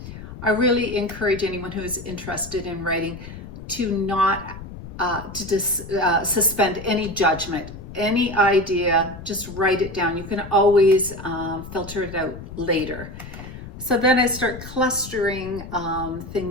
I really encourage anyone who is interested in writing to not suspend any judgment. Any idea, just write it down. You can always filter it out later. So then I start clustering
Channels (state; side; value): noise; left; rumble, 13 dB below the sound